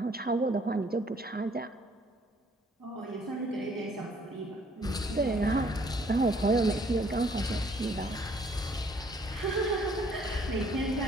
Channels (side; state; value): both; normal; correlation 0.62